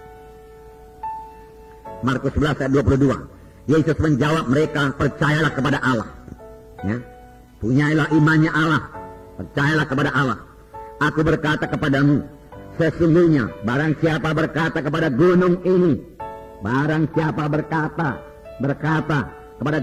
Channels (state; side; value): identical; both; correlation 1.00